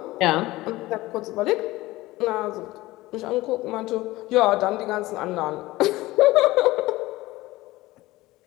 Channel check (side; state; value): right; quieter; 18.6 dB